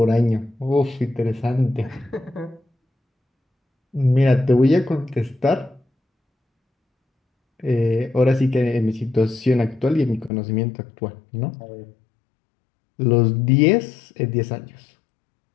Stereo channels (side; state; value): right; drops out; at 10.3 s